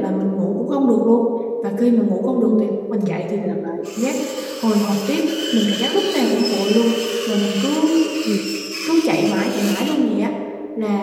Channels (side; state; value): both; identical; correlation 1.00